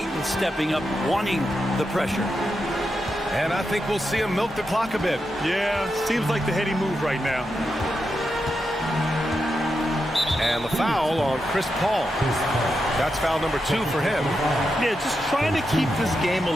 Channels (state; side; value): normal; both; correlation 0.86